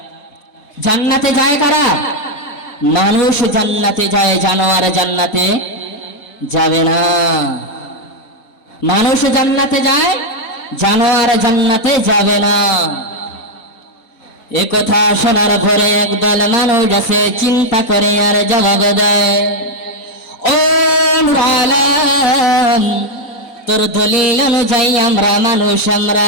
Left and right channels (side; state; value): right; late; 4.2 ms